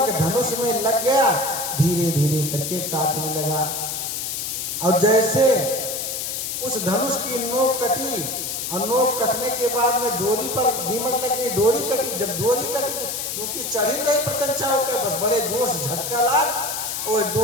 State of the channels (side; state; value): left; noise; hiss, 3 dB below the sound